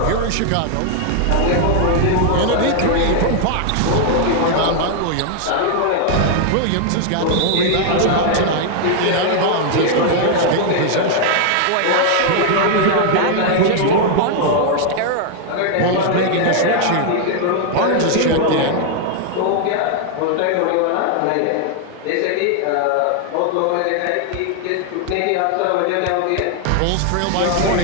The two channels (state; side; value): different; both; correlation 0.00